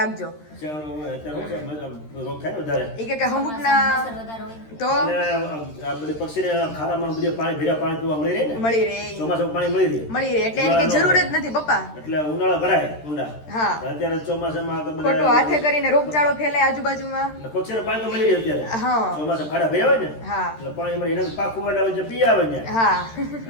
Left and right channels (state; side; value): late; right; 13 ms